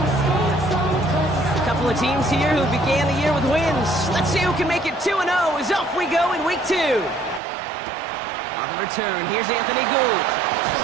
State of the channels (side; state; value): left; drops out; at 7.4 s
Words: Teams here who began the year with wins. Let's see who can make it 2-0 as off we go in week 2. On the return, here's Anthony Gould.